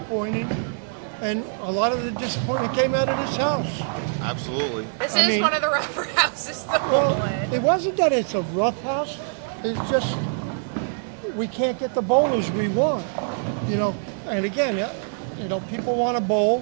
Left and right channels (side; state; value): left; silent; digital silence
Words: and a lot of the disappointment came out of this house. Absolutely. This is one of the rougher houses to bowl in. It wasn't that it's a rough house. It's just we can't get the bowlers we want. And again, people want to bowl,